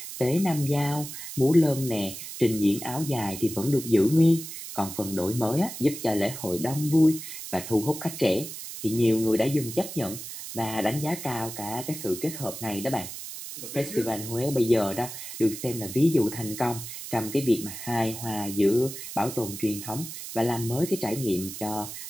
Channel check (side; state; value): right; noise; hiss, 10 dB below the sound